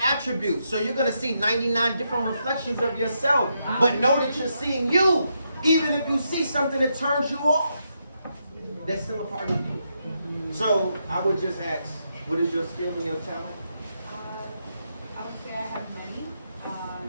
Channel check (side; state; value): both; inverted; correlation -0.81